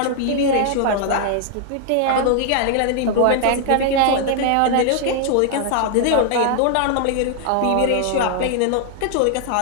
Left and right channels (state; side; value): different; both; correlation 0.00